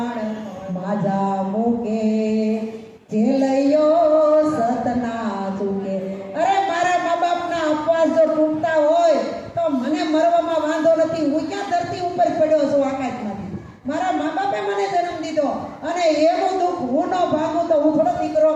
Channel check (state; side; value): identical; both; correlation 1.00